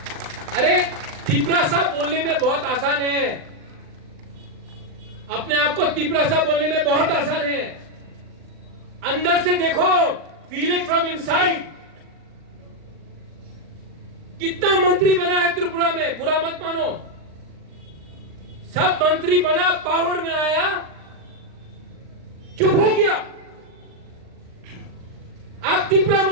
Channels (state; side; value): late; left; 39 ms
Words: अरे तिपरासा बोलने में बहुत आसान है, अपने आप को तिपरासा बोलने में बहुत आसान है। अंदर से देखो, फील इट फ्रॉम इनसाइड। कितना मंत्री बना है त्रिपुरा में, बुरा मत मानो। सब मंत्री बना, पावर में आया, चुप हो गया। आप तिपरा